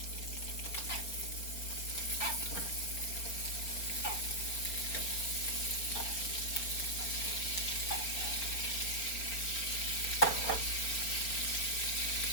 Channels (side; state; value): right; late; 4.4 ms